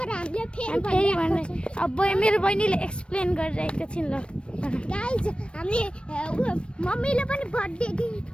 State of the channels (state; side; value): late; right; 0.058 ms